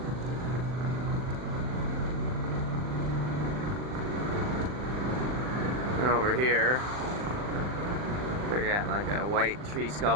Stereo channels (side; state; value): left; late; 39 ms